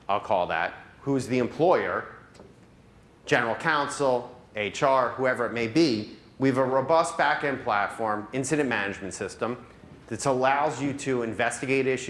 I'll call that, who's the employer, general counsel, HR, whoever it may be, We have a robust back-end platform, incident management system, that allows you to investigate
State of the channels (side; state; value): both; identical; correlation 1.00